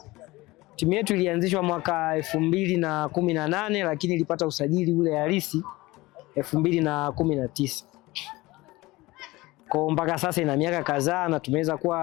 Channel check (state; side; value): quieter; right; 20.5 dB